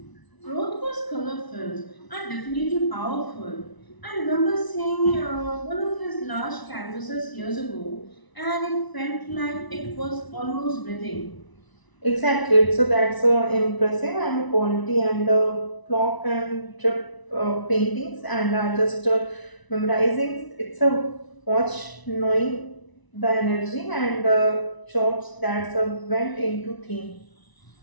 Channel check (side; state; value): right; late; 1.0 ms